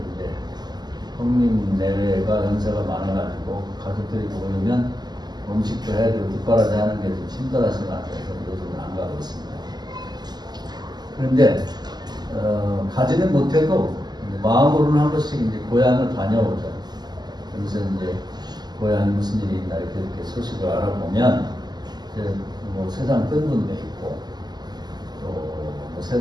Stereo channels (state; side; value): late; left; 0.20 ms